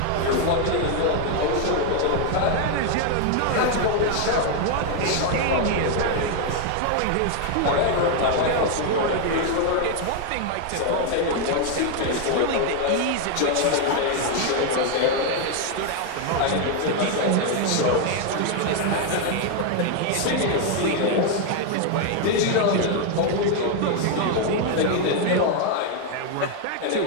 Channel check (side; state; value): both; different; correlation 0.01